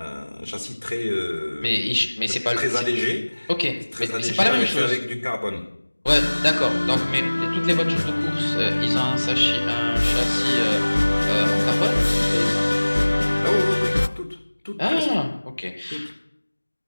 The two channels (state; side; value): inverted; both; correlation -1.00